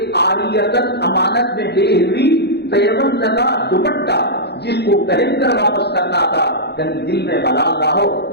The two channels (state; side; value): late; right; 0.48 ms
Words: عاریتن امانت میں دے ہوئی پیغمبر لگا دوپٹہ جس کو پہن کر واپس کرنا تھا، کہیں دل میں ملال نہ ہو.